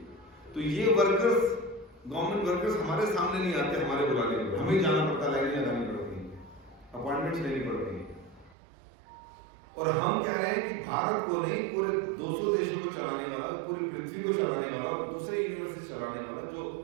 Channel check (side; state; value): left; drops out; at 8.6 s